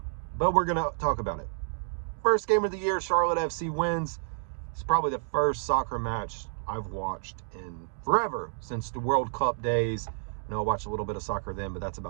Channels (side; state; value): left; silent; digital silence